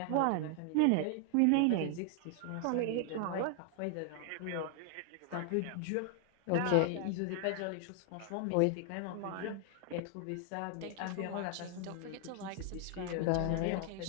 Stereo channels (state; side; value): different; both; correlation 0.00